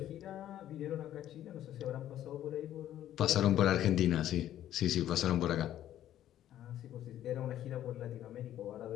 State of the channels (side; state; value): right; quieter; 12.0 dB